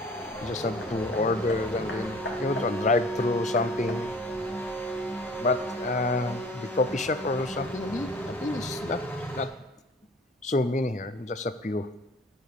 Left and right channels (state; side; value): normal; both; correlation 0.48